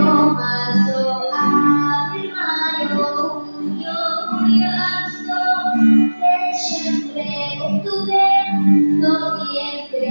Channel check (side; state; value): both; inverted; correlation -1.00